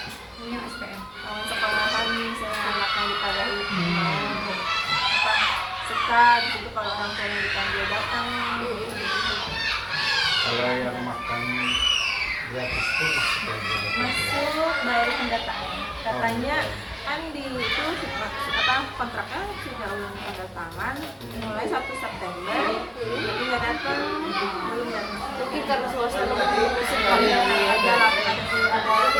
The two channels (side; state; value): both; identical; correlation 1.00